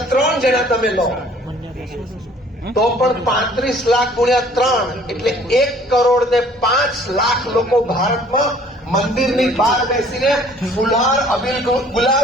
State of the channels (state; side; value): normal; both; correlation 0.55